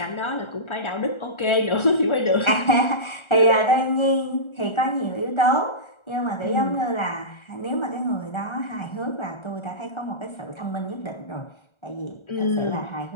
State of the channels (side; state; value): right; late; 1.4 ms